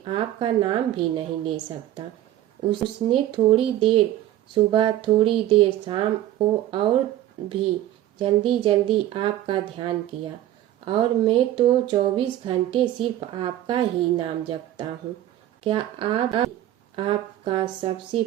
आपका नाम भी नहीं ले सकता। उसने थोड़ी देर सुबह, थोड़ी देर शाम को और भी जल्दी जल्दी आपका ध्यान किया, और मैं तो 24 घंटे सिर्फ आपका ही नाम जपता हूँ। क्या आपका सबसे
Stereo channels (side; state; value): left; quieter; 13.3 dB